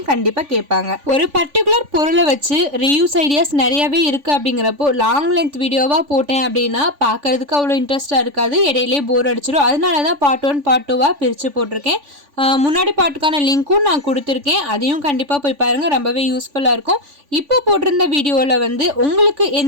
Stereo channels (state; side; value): late; left; 3.5 ms